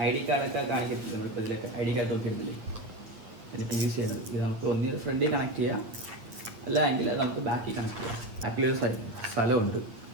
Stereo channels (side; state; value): left; late; 9.1 ms